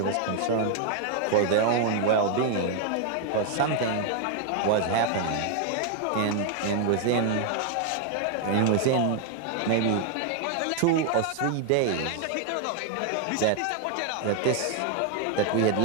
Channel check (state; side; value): different; both; correlation 0.00